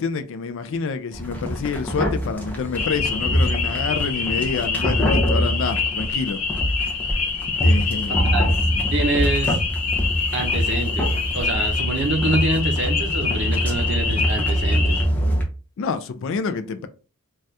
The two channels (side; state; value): both; normal; correlation 0.57